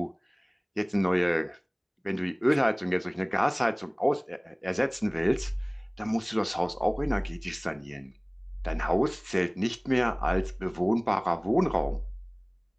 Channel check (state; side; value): identical; both; correlation 1.00